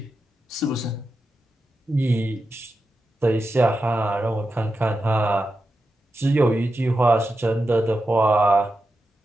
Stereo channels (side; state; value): both; normal; correlation 0.89